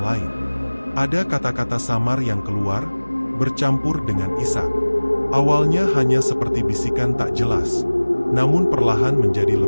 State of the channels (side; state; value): both; inverted; correlation -1.00